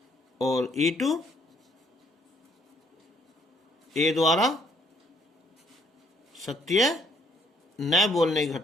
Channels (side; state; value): both; normal; correlation 0.66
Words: और E2 ए द्वारा सत्य न बोलने की